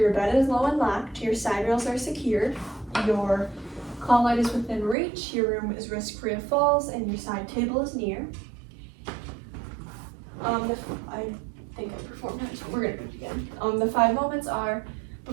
bed is low and locked, your side rails are secured, your call light is within reach, your room is risk-free of falls, and your side table is near. I think I performed that, so we're gonna do it again. The 5 moments are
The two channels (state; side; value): drops out; left; at 5.0 s